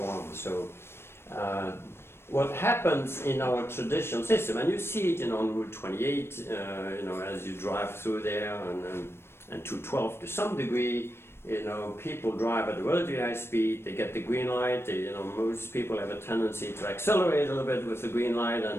on. So what happens in our traditional system, and you see it on Route 28, as you drive through there, and 212 to some degree, You know, people drive at a relatively high speed, they get the green light, you know, most people have a tendency to accelerate a little bit with the green light,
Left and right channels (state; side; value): late; right; 0.12 ms